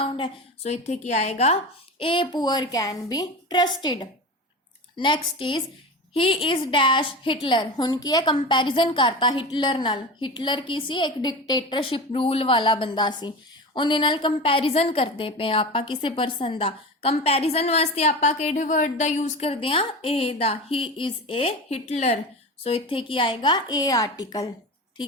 है, सो इत्थे की आएगा a poor can be trusted. Next is he is dash Hitler. हुण की है कंपैरिजन करता हिटलर नाल। हिटलर की सी एक डिक्टेटरशिप रूल वाला बंदा सी, उहदे नाल कंपैरिजन करते पे आपां किसी परसन दा। कंपैरिजन वास्ते आपां किहड़े वर्ड दा यूज करदे आ ए दा। ही इज ए हिटलर, सो इत्थे की आएगा ए आर्टिकल।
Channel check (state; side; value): normal; both; correlation 0.28